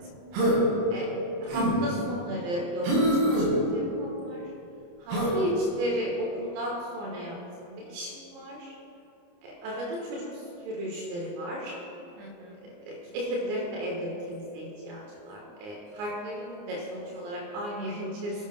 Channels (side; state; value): left; late; 29 ms